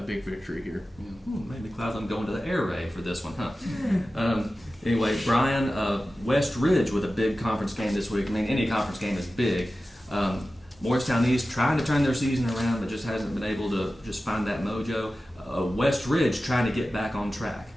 big victory here. Maybe Cloudland going to the air raid for this one, huh? Anyway, Brian, West Ridge with a big conference game this week. I mean, any conference game is big. Morristown East trying to turn their season around, but just hasn't been able to just find that mojo. West Ridge trying to get back on track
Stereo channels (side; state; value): both; normal; correlation 0.95